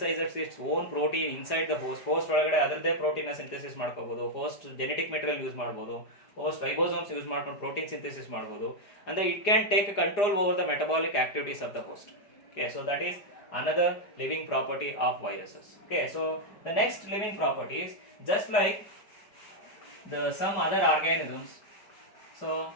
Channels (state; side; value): late; right; 4.9 ms